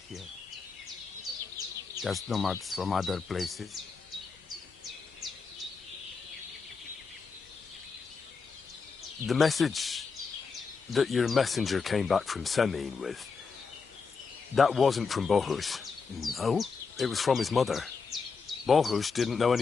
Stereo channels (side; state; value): right; quieter; 5.1 dB